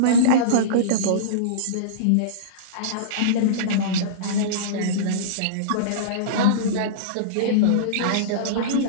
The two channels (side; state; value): both; different; correlation -0.05